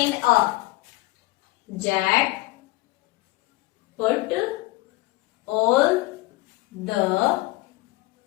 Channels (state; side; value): quieter; right; 20.3 dB